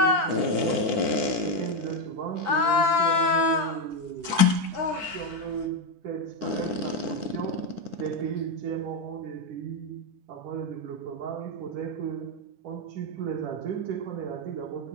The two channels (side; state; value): left; late; 9.9 ms